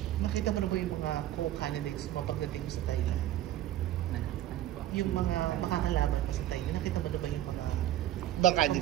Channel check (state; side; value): quieter; left; 13.2 dB